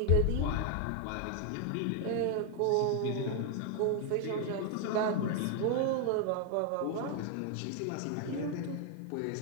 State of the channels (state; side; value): different; both; correlation 0.00